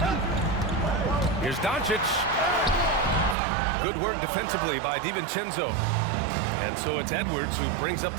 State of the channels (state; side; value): drops out; left; at 3.4 s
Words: Here's Doncic. Good work defensively by DiVincenzo. And so it's Edwards who brings up